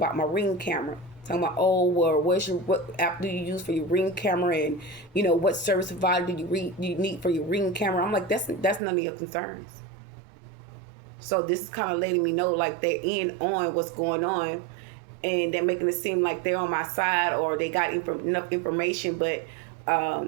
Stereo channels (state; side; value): drops out; left; at 8.8 s